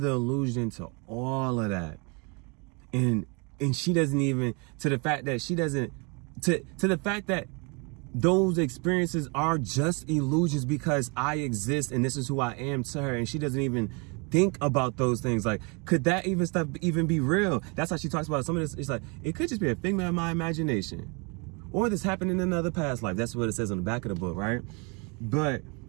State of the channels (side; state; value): left; quieter; 31.7 dB